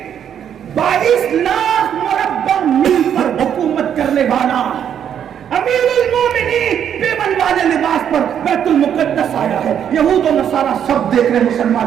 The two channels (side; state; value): left; quieter; 9.0 dB